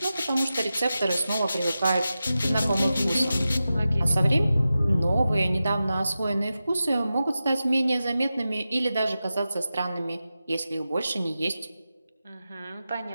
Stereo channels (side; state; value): both; inverted; correlation -0.93